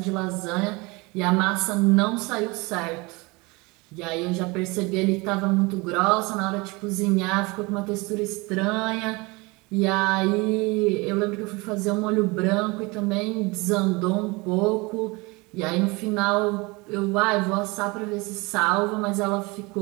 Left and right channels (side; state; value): left; quieter; 25.4 dB